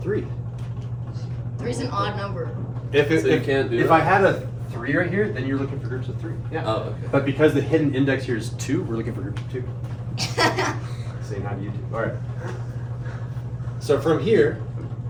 3. 3's an odd number. If So you can't do if that? I had a 3 right here, then you're looking for groups of 3. Yeah. Oh, okay. But because the hidden index here is 2, we're looking for groups of 2. Saying how do you do? All right. So from here,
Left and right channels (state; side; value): identical; both; correlation 1.00